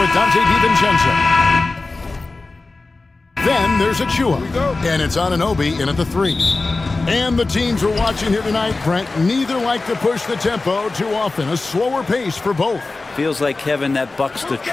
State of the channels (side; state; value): right; quieter; 3.5 dB